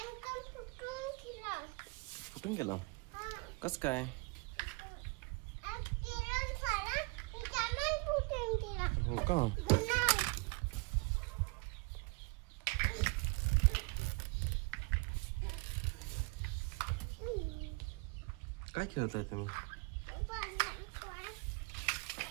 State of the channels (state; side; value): quieter; left; 28.9 dB